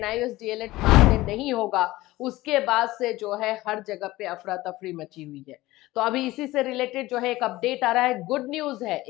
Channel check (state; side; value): quieter; right; 18.1 dB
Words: डीएलएड मान्य नहीं होगा, उसके बाद से जो है हर जगह पे अफरा तफरी मची हुई है। तो अभी इसी से रिलेटेड जो है एक अपडेट आ रहा है, गुड न्यूज है